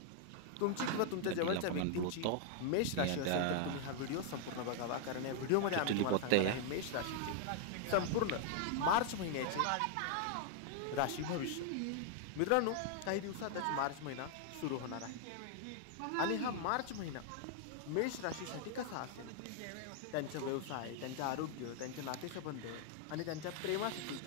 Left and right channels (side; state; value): both; different; correlation 0.00